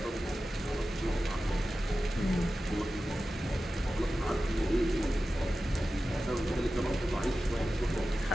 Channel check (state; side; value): normal; both; correlation 0.94